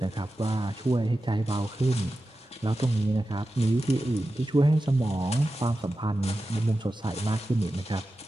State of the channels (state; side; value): normal; both; correlation 0.93